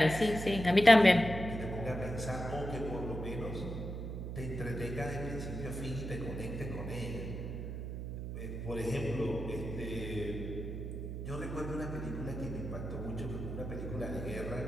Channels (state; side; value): noise; right; hum, 6 dB below the sound